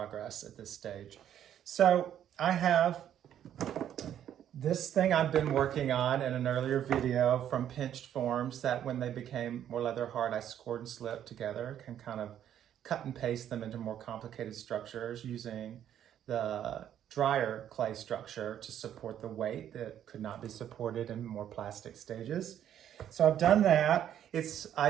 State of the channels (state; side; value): quieter; left; 10.3 dB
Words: at this stage. So I have this thing I've been working on in an earlier video from pinched forms that when they became more leather hard I scored and slipped together, can kind of cut and paste them into more complicated structures using the drier clay structure to support the weight that could not be supported in more plastic stages. So I've done that.